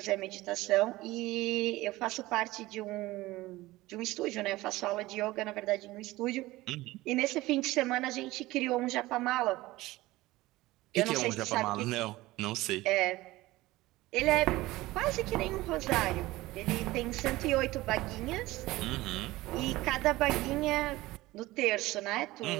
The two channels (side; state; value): left; quieter; 18.6 dB